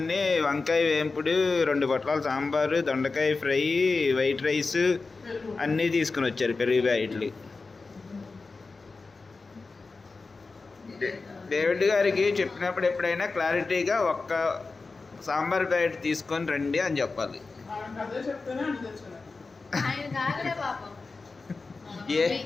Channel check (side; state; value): right; quieter; 4.0 dB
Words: వంకాయ వేపుడు, 2 పొట్లాలు సాంబారు, దొండకాయ ఫ్రై, వైట్ రైస్ అన్నీ తీసుకుని వచ్చారు, పెరుగు ప్యాకెట్లు. డేవిడ్ గారికి చెప్పినప్పుడు ఎప్పుడైనా క్లారిటీగా ఒక్క సాంబార్ ప్యాకెట్ తీసుకొని రండి అని చెప్పాలి. ఏ